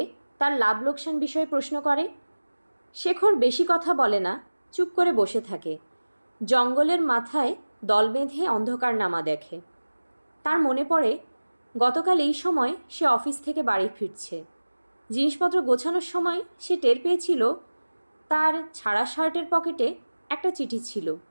তার লাভ লোকসান বিষয়ে প্রশ্ন করে। শেখর বেশি কথা বলে না, চুপ করে বসে থাকে। জঙ্গলের মাথায় দল বেঁধে অন্ধকার নামা দেখে। তার মনে পড়ে গতকাল এই সময় সে অফিস থেকে বাড়ি ফিরছে। জিনিসপত্র গোছানোর সময় সে টের পেয়েছিল তার ছাড়া শার্টের পকেটে একটা চিঠি ছিল।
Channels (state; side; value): inverted; both; correlation -1.00